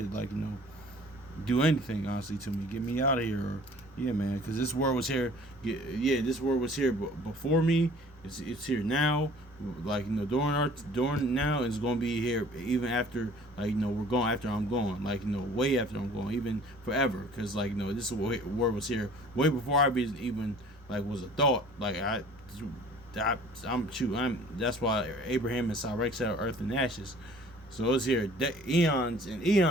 do anything, honestly, to me. Get me out of here, or, yeah, man, because this word was here. Yeah, this word was here before me. It's here now. During now, it's gonna be here even after, we're going after I'm gone. Way after I'm gone, even forever. Because this word was here way before I even was a thought. That's why Abraham and Sarah said earth and ashes. So it's here eons and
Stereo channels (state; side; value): normal; both; correlation 0.50